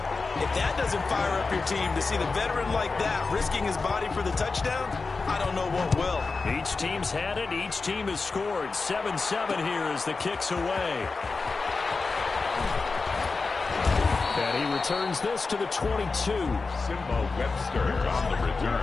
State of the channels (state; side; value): quieter; right; 4.1 dB